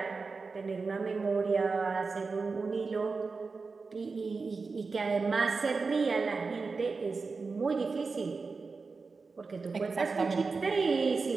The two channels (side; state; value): left; quieter; 4.4 dB